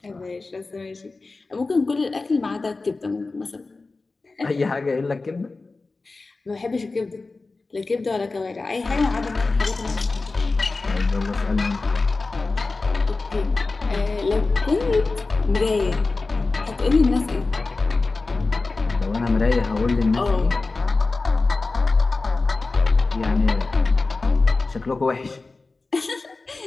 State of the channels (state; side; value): quieter; right; 3.6 dB